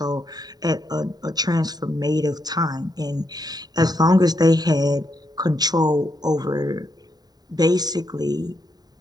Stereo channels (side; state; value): left; late; 0.19 ms